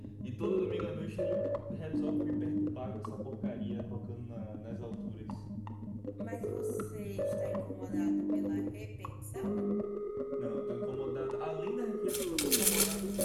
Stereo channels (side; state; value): both; identical; correlation 1.00